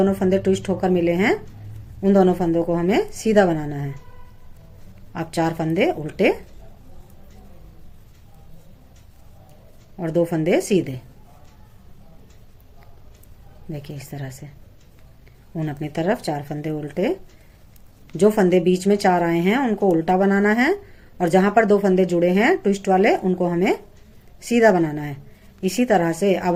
फंदे ट्विस्ट होकर मिले हैं उन दोनों फंदों को हमें सीधा बनाना है। अब 4 फंदे उल्टे और 2 फंदे सीधे। देखिए इस तरह से उन अपनी तरफ 4 फंदे उल्टे। जो फंदे बीच में 4 आए हैं उनको उल्टा बनाना है और जहां पर 2 फंदे जुड़े हैं ट्विस्ट वाले उनको हमें सीधा बनाना है। इसी तरह से अब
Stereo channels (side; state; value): both; identical; correlation 1.00